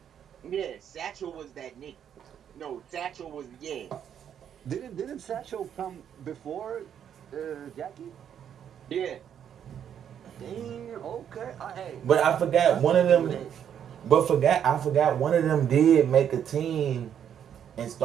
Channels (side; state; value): left; quieter; 9.0 dB